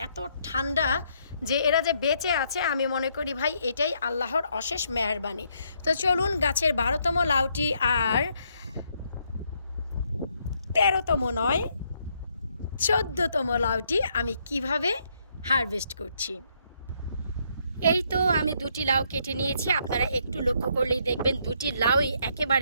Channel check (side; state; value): both; inverted; correlation -0.72